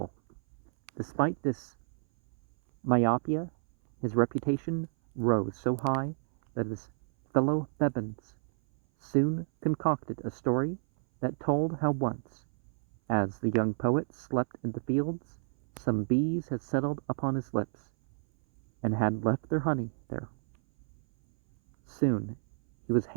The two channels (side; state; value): left; silent; 57 dB below the other